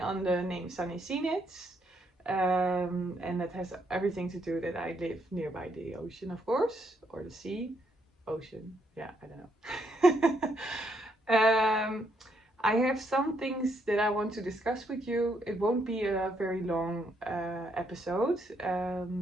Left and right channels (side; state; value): both; normal; correlation 0.74